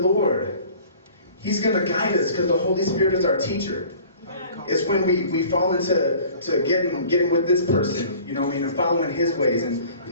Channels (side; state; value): both; inverted; correlation -0.48